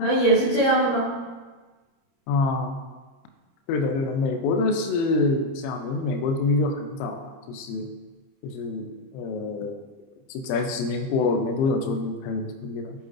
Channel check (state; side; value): late; right; 30 ms